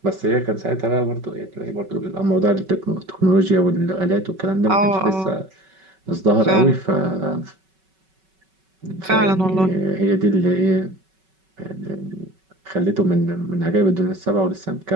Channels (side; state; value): left; late; 5.3 ms